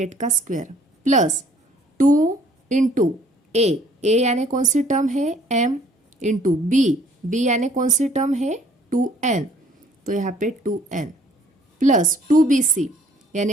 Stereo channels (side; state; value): both; normal; correlation 0.58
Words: का स्क्वायर प्लस 2 इंटू a यानी कौन सी टर्म है m इंटू b यानी कौन सी टर्म है 2n, तो यहाँ पे 2n प्लस 2bc